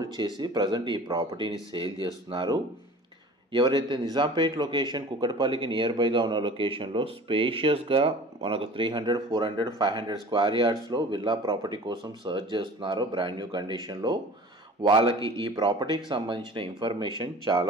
చేసి ప్రజెంట్ ఈ ప్రాపర్టీని సేల్ చేస్తున్నారు. ఎవరైతే నిజాంపేట్ లొకేషన్ కుక్కటపల్లికి నియర్ బైగా ఉన్న లొకేషన్లో స్పేషియస్గా మనకు 300, 400, 500 స్క్వేర్ యార్డ్స్లో విల్లా ప్రాపర్టీ కోసం సర్చ్ చేస్తున్నారో బ్రాండ్ న్యూ కండిషన్లో వాళ్ళకి ఈ ప్రాపర్టీకి సంబంధించిన ఇన్ఫర్మేషన్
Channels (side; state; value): both; normal; correlation 0.42